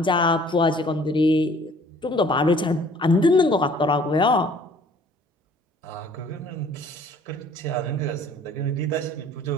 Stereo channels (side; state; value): both; normal; correlation 0.55